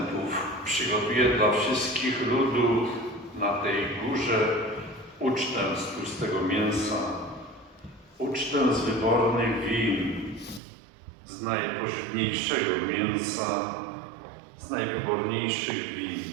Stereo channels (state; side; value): drops out; left; at 10.6 s